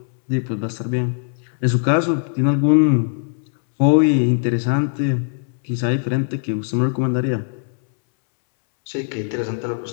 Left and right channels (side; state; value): right; silent; 66 dB below the other